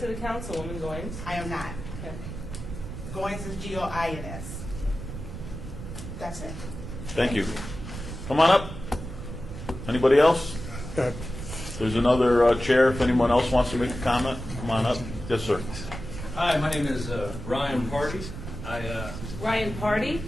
the councilwoman Goins? I am not. Okay. Goins is G-O-I-N-S. That's it. Thank you. Come on up. Anybody else? There's another chair. If anyone else wants to make a comment, come on up. Yes, sir. Hi, my name is Ryan Party. Ryan Party?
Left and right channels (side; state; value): right; noise; rumble, 9 dB below the sound